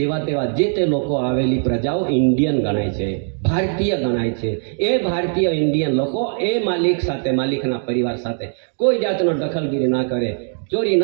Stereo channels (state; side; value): silent; left; 60 dB below the other